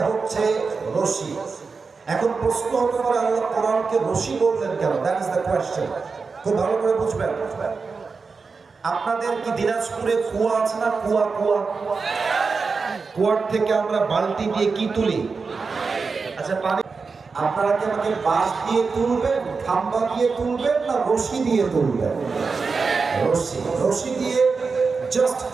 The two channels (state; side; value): quieter; left; 4.7 dB